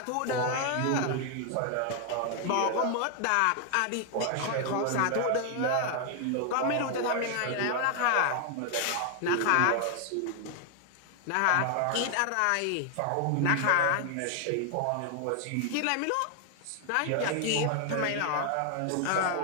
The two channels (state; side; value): different; both; correlation 0.00